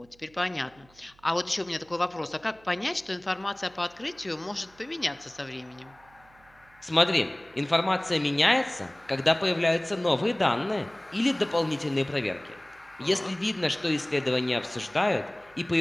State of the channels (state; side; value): noise; right; hum, 29 dB below the sound